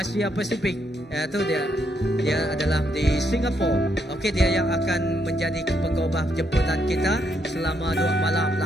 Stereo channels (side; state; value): both; normal; correlation 0.76